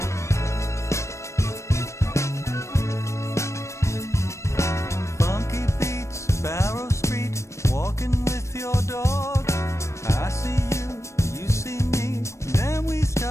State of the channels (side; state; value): right; late; 0.14 ms